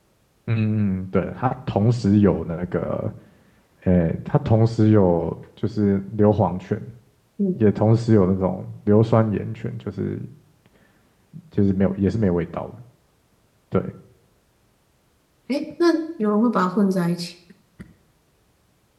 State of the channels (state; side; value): identical; both; correlation 1.00